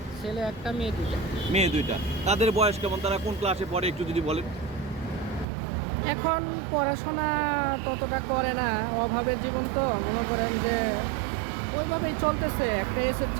ছেলে 1টা, মেয়ে 2টা। মেয়ে 2টা। তাদের বয়স কেমন, তারা কোন ক্লাসে পড়ে একটু যদি বলেন। এখন পড়াশোনা ততটা করে না, অভাবের জীবন তো, মনে করেন যে ওইভাবেই চলতেছে। একটা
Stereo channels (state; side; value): drops out; left; at 5.5 s